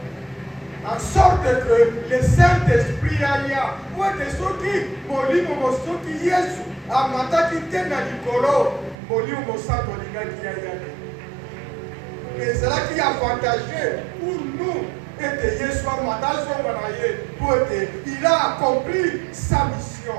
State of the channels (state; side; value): drops out; left; at 9.0 s